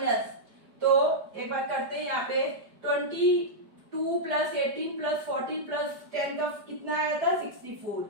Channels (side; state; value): left; late; 4.9 ms